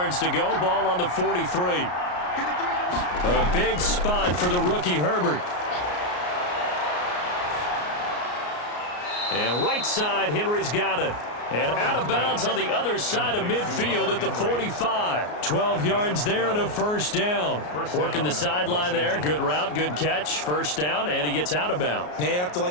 to go, ball on the 43. A big spot for the rookie Herbert. And right side, Henry's got it. And out of bounds on the other side of midfield at the 45. 12 yards there and a 1st down. Working the sideline there. Good route, good catch. 1st down, and he gets out of bounds. Yeah, you have to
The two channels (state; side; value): late; right; 33 ms